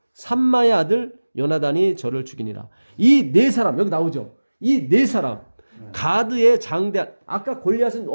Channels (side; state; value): both; inverted; correlation -1.00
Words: 삼마의 아들 요나단이 저를 죽이니라. 이 4사람 여기 나오죠. 이 4사람 가드의 장대한, 아까 골리앗은